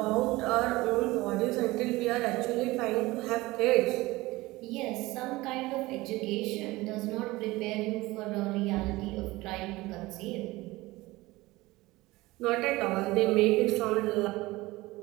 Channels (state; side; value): quieter; left; 20.1 dB